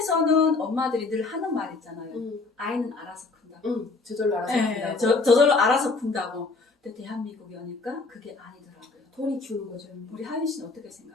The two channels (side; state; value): right; quieter; 3.8 dB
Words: 엄마들이 늘 하는 말 있잖아요. 아이는 알아서 큰다고. 저절로 알아서 네, 큰다고. 저절로 알아서 큰다고. 근데 대한민국에 오니까 그게 아니더라고요. 돈이 키우는 거죠. 우리 하윤 씨는 어떻게